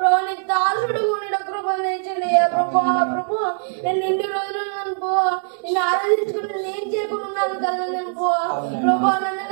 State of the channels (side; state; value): left; silent; digital silence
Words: నీ దాసుడు ఉండడం కృపను తెచ్చిందయ్యా ప్రభా ప్రభా. నేను ఇన్ని రోజులు నిన్ను ఆరాధించుకుని నేను చేయకున్నాను కదా అనుకో ప్రభా. నన్ను